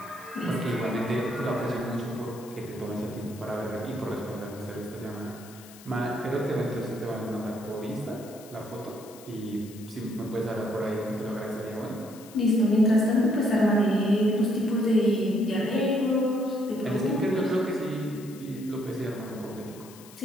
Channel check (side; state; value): left; noise; hiss, 20 dB below the sound